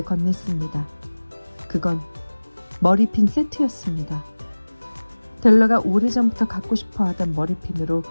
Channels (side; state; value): both; inverted; correlation -1.00